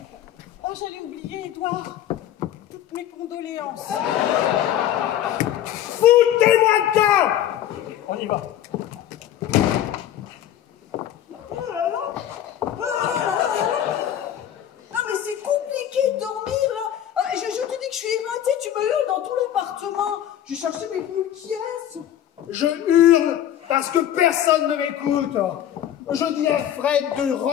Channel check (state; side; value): quieter; right; 11.1 dB